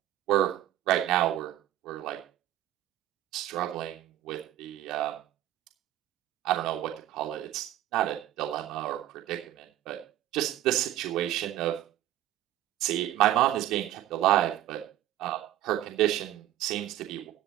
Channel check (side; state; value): left; quieter; 13.4 dB